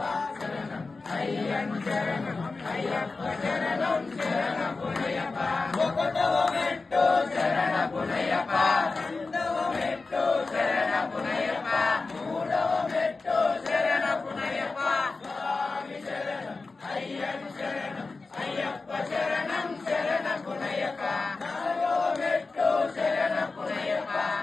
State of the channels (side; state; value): right; quieter; 3.9 dB